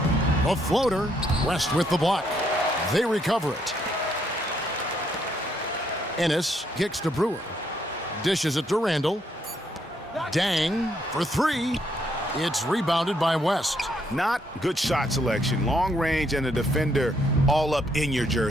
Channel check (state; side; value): normal; both; correlation 0.72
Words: A floater. West with the block. They recover it. Ennis kicks to Brewer. Dishes it to Randall. Dang for 3. It's rebounded by West. Not good shot selection. Long range and a defender all up in your